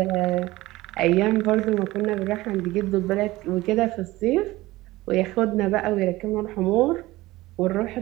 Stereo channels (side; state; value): left; quieter; 18.6 dB